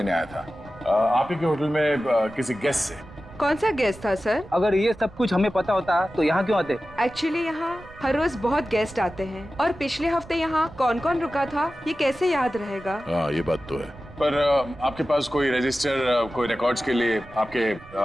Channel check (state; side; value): noise; right; rumble, 20 dB below the sound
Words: आया था आप ही के होटल में किसी गेस्ट से। कौन सा गेस्ट था सर? अगर ये सब कुछ हमें पता होता तो यहाँ क्यों आते? एक्चुअली यहाँ हर रोज बहुत गेस्ट आते हैं और पिछले हफ्ते यहाँ कौन कौन रुका था ये कैसे याद रहेगा? हाँ, ये बात तो है। पर आपके पास कोई रजिस्टर, कोई रिकॉर्ड्स के लिए आपके